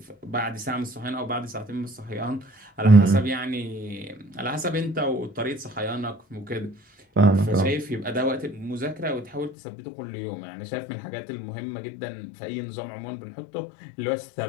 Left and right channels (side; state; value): right; drops out; at 9.6 s